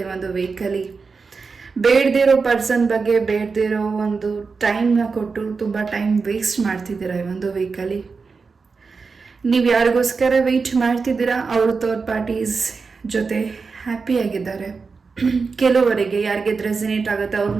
ಈ ಒಂದು ವೀಕಲ್ಲಿ. ಬೇಡದಿರೋ ಪರ್ಸನ್ ಬಗ್ಗೆ ಬೇಡದಿರೋ ಒಂದು ಟೈಮ್ನ ಕೊಟ್ಟು ತುಂಬ ಟೈಮ್ ವೇಸ್ಟ್ ಮಾಡ್ತಿದ್ದೀರಾ ಈ ಒಂದು ವೀಕಲ್ಲಿ. ನೀವು ಯಾರಿಗೋಸ್ಕರ ವೆಯ್ಟ್ ಮಾಡ್ತಿದ್ದೀರಾ ಅವರು ಥರ್ಡ್ ಪಾರ್ಟೀಸ್ ಜೊತೆ ಹ್ಯಾಪಿಯಾಗಿದ್ದಾರೆ. ಕೆಲವರಿಗೆ ಯಾರಿಗೆ ರೆಸಿನೇಟ್ ಆಗುತ್ತೆ ಅವ್ರು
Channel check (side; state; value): left; quieter; 4.7 dB